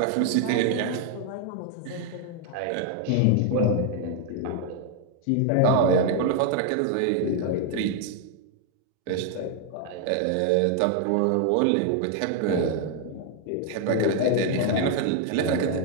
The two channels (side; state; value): both; different; correlation 0.00